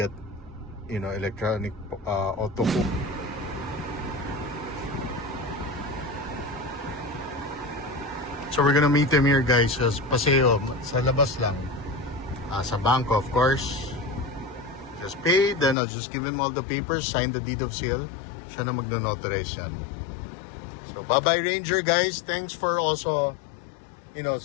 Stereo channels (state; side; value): drops out; right; at 15.8 s